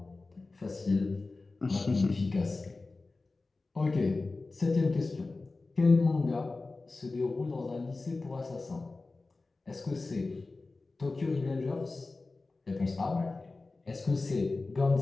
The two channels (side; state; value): right; quieter; 3.5 dB